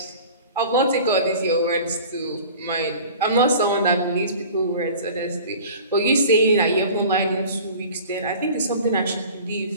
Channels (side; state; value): both; inverted; correlation -0.42